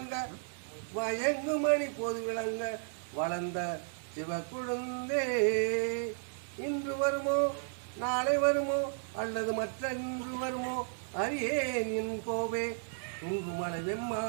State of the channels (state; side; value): silent; left; digital silence